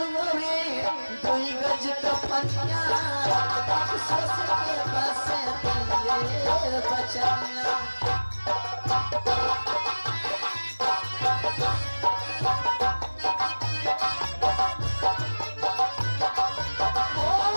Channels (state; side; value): inverted; both; correlation -1.00